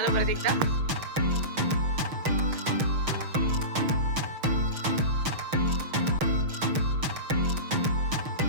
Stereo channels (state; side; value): late; left; 6.5 ms